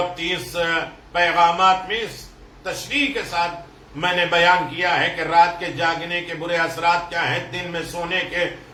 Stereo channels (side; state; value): both; identical; correlation 1.00